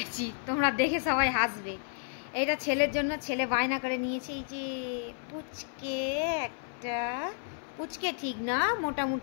তোমরা দেখে সবাই হাসবে। এটা ছেলের জন্য, ছেলে বায়না করে নিয়েছে এই যে পুচকে, একটা পুচকে ঠিক না,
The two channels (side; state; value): right; silent; 57 dB below the other